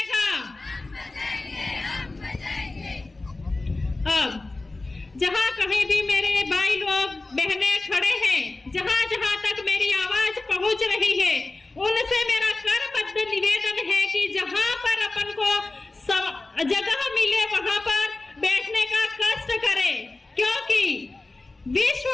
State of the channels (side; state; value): right; quieter; 3.2 dB